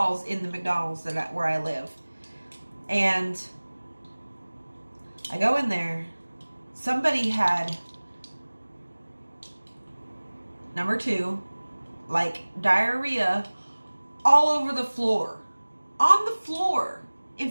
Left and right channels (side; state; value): both; inverted; correlation -1.00